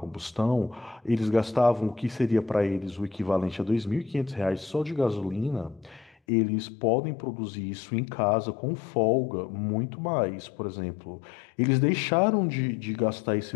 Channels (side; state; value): right; drops out; at 6.2 s